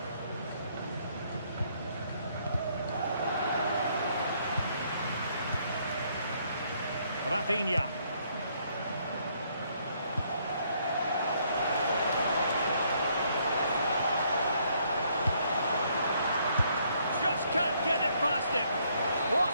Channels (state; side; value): inverted; both; correlation -0.69